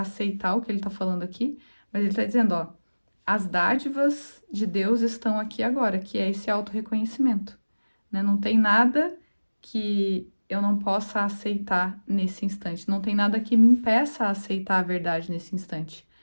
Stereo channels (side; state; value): both; inverted; correlation -1.00